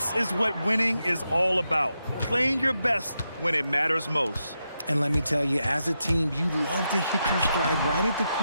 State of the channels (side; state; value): both; inverted; correlation -0.86